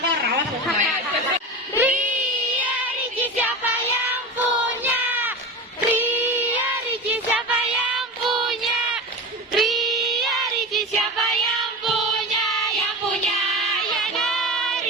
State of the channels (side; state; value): both; normal; correlation 0.27